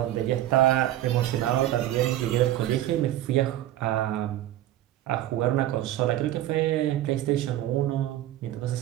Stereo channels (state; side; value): quieter; left; 13.6 dB